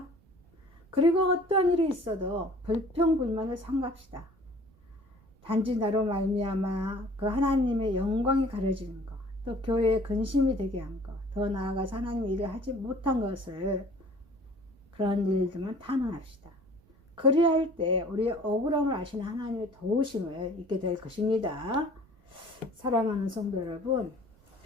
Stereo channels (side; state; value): right; noise; rumble, 29 dB below the sound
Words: 그리고 어떠한 일이 있어도 불평불만을 삼갑시다. 단지 나로 말미암아 그 하나님의 영광이 가려지는 것, 또 교회의 근심이 되게 한 것, 더 나아가서 하나님의 일을 하지 못한 것을 그런 일들만 탄원합시다. 그리할 때 우리의 억울함을 아시는 하나님의 도우심을 잊게 될 것입니다. 사랑하는 성도 여러분,